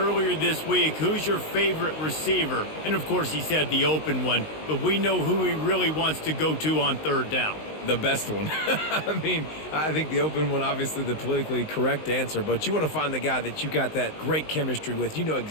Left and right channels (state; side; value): late; right; 19 ms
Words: this week, who's your favorite receiver? And of course he said the open one, but we know who he really wants to go to on third down. The best one. I mean, I think the open one, obviously the politically correct answer, but you want to find the guy that you got that great chemistry with. You know